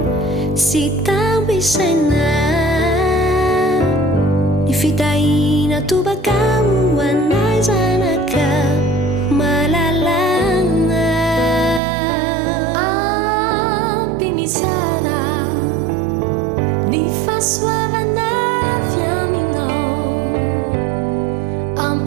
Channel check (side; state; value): left; drops out; at 11.8 s